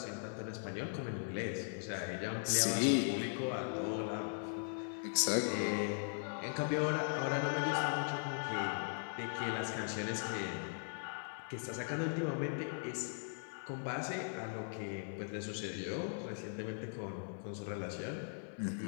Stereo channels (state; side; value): silent; right; 52 dB below the other